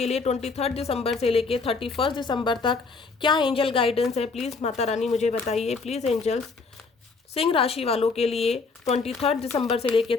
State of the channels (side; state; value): right; quieter; 4.4 dB